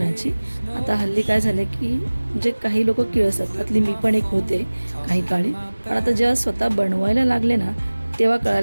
आता हल्ली काय झालं की म्हणजे काही लोक किळसतात, त्यातली मी पण एक होते काही काळी. पण आता जेव्हा स्वतः बनवायला लागले ना, तेव्हा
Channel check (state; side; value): inverted; both; correlation -1.00